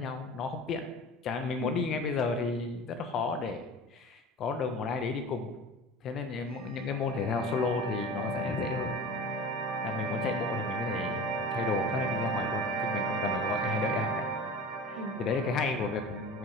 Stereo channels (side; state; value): both; normal; correlation 0.36